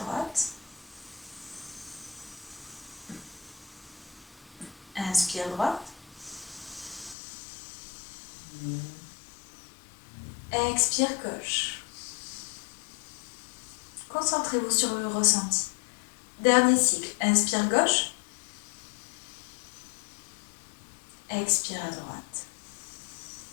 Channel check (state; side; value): drops out; right; at 7.2 s